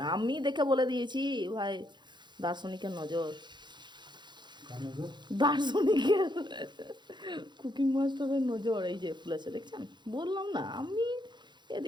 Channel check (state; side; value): late; left; 0.22 ms